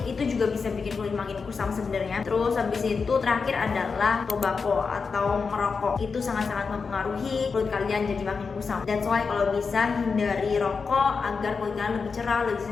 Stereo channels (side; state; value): right; quieter; 5.1 dB